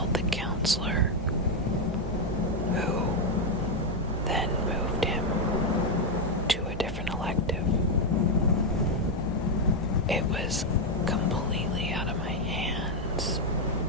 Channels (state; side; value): normal; both; correlation 0.03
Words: the counselor, who then moved him to a different elective. It was completely out of my hands.